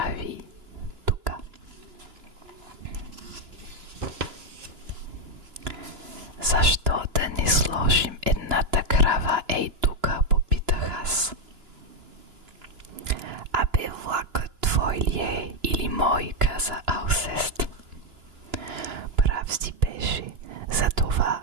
тука. Защо да не сложим едната крава ей тука, попитах аз. Абе, влакът твой ли е или мой, каза Алсест. Прав си беше, затова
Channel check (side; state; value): left; late; 2.9 ms